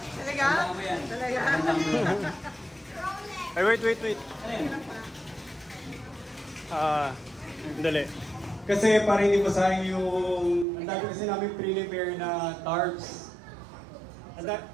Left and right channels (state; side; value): drops out; left; at 10.7 s